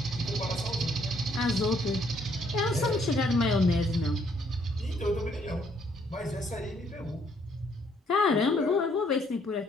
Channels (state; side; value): normal; both; correlation 0.67